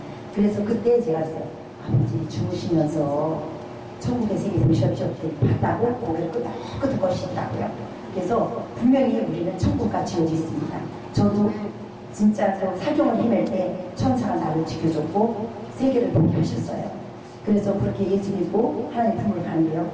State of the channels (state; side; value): identical; both; correlation 1.00